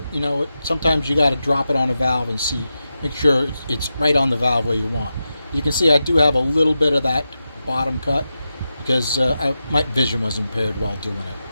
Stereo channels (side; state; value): both; inverted; correlation -0.90